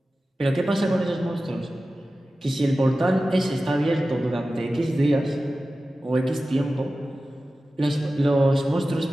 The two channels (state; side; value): normal; both; correlation 0.95